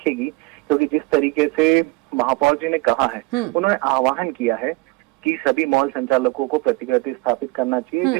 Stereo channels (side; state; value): left; quieter; 22.7 dB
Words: क्योंकि जिस तरीके से महापौर जी ने कहा है, उन्होंने आह्वान किया है कि सभी मॉल संचालकों को प्रतिकृति स्थापित करना चाहिए।